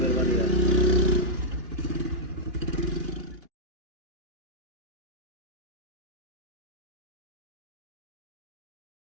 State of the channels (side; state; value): left; late; 2.9 ms